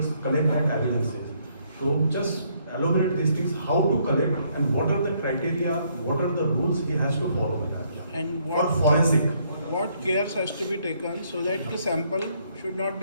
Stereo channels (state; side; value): inverted; both; correlation -0.69